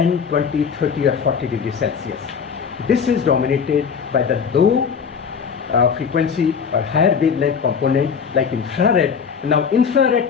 20, 30 or 40 degrees Celsius. This is dominated by the low frequency or higher wavelength component like infrared. Now infrared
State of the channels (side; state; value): right; quieter; 6.5 dB